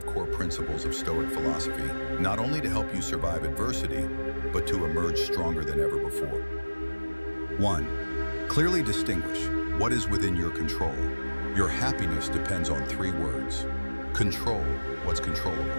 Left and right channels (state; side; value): inverted; both; correlation -1.00